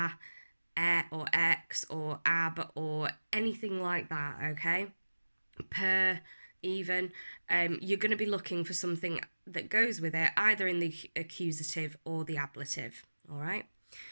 x, or ab, or anything like that, okay, per, even, you're going to be looking for something that goes with it, either in the accusative or the ablative, all right?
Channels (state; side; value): inverted; both; correlation -1.00